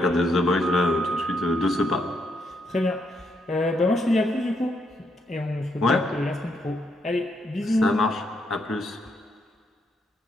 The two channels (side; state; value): both; normal; correlation 0.77